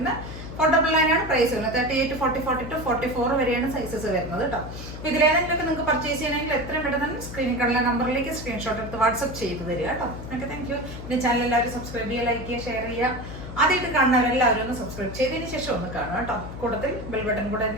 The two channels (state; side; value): noise; left; hum, 10 dB below the sound